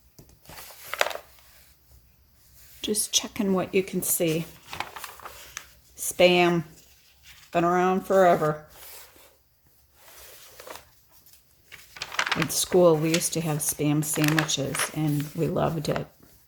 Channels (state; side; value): identical; both; correlation 1.00